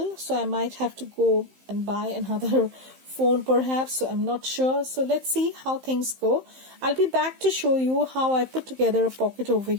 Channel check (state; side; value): late; left; 15 ms